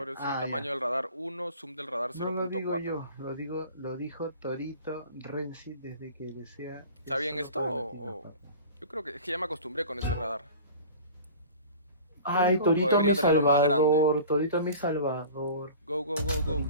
sí, ya. tamaño del radar 1, zoom del radar No lo digo 0.4. yo, lo dijo Torito Renzi desde que desea. ¿Está bien eso esto para o- Latino, Yo creo que es que ya me acostumbré con ese radar. Ay, O Torito debería mi tenerlo más salvador, Torito mi salvador. Go.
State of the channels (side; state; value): both; inverted; correlation -0.40